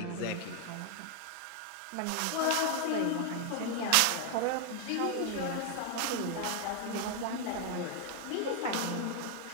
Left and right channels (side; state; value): both; different; correlation 0.00